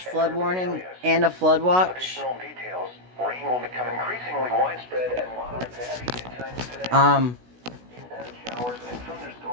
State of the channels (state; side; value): late; left; 16 ms